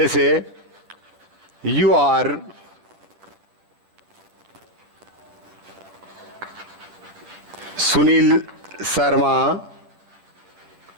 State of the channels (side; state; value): left; late; 9.7 ms